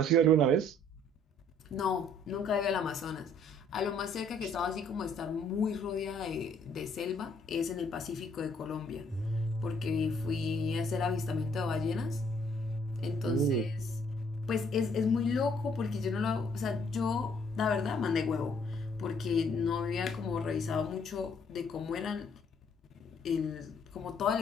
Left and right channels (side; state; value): both; normal; correlation 0.63